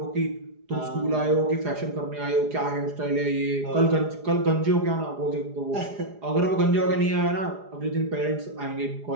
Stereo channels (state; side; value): late; left; 4.8 ms